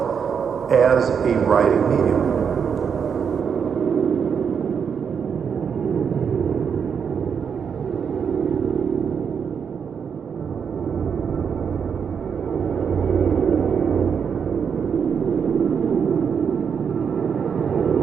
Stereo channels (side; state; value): left; quieter; 6.9 dB